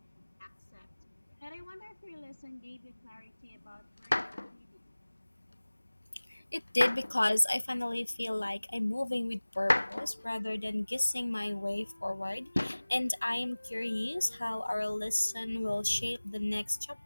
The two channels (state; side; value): inverted; both; correlation -1.00